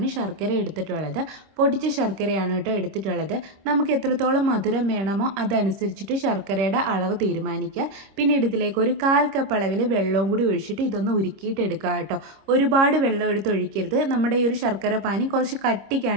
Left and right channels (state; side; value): late; left; 26 ms